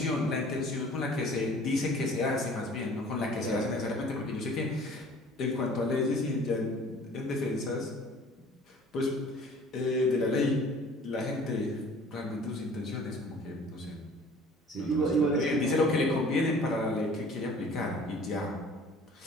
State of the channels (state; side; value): normal; both; correlation 0.49